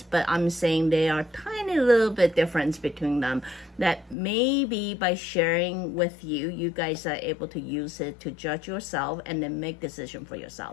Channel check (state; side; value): drops out; right; at 4.2 s